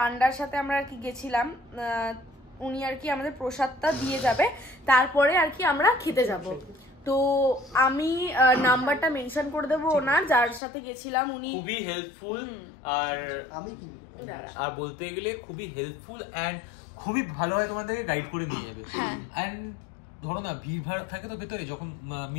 সাথে আমরা আর কি গেছিলাম, উনি আর কি আমাদের প্রসাদটা দিয়ে যাবে, তারপরে আর কি আমরা খেতে যাব। তো আমি নাম্বারটা মেনশন করে দেবো ওনার, যার সাথে গেছিলাম। উনি খুবই হেল্পফুল, আর বলতে গেলে খুবই হেল্পফুল এন্ড খুবই ভালোভাবে তোমাদেরকে গাইড করে নিয়ে যাবে। এন্ড ধরো না ভিড় ভাড় থাকে তো ভেতরে, যখন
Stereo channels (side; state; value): right; drops out; at 10.6 s